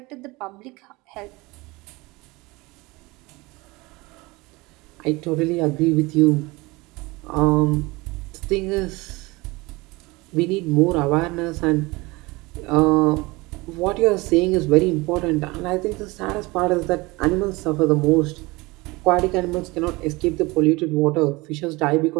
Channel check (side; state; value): left; quieter; 23.1 dB